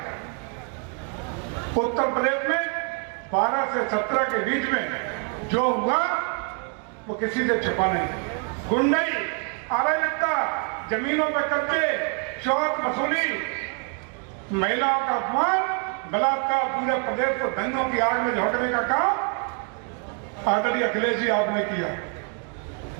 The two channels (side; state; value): left; quieter; 37.4 dB